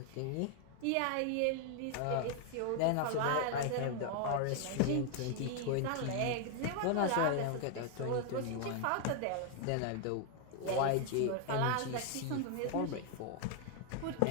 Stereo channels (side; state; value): both; different; correlation 0.00